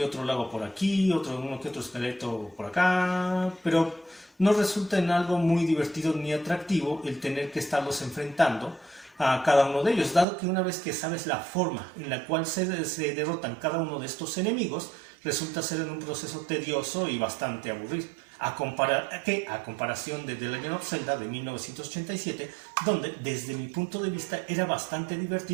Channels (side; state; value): left; drops out; at 10.2 s